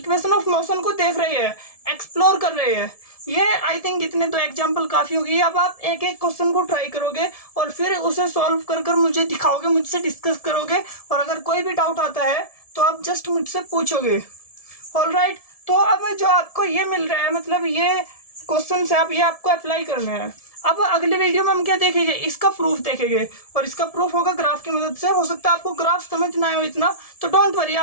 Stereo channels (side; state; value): right; late; 1.7 ms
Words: ऑफ मोशन को देख रहे हैं, एक्सप्लोर कर रहे हैं, ये आई थिंक इतने तो एग्जाम्पल काफी होगी। अब आप एक एक क्वेश्चन को ट्राई करोगे और फिर उसे सॉल्व कर कर मुझे दिखाओगे, मुझसे डिस्कस करोगे, और अगर कोई भी डाउट आता है तो आप जस्ट मुझसे पूछोगे। ऑलराइट, तो अब जो आपको ये मिल रहा है, मतलब ये क्वेश्चन है, अब ये आपको अप्लाई करना है। अब अगले वीडियो में हम क्या देखेंगे, इसका प्रूफ देखेंगे, और इसका प्रूफ होगा ग्राफ की मदद से। हो सकता है आपको ग्राफ समझ ना आए हो इतना, तो डोंट वरी,